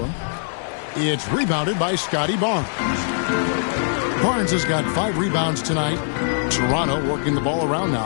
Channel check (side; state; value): right; silent; 57 dB below the other